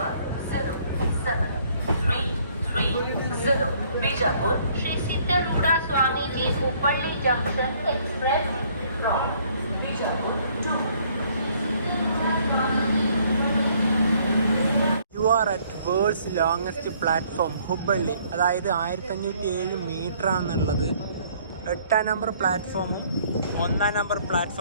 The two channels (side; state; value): both; inverted; correlation -0.62